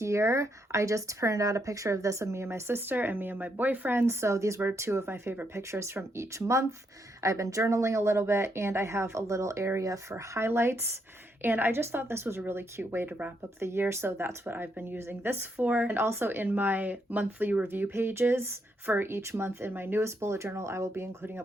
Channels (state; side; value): normal; both; correlation 0.77